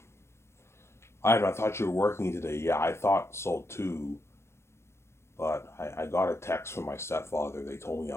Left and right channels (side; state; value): right; late; 0.13 ms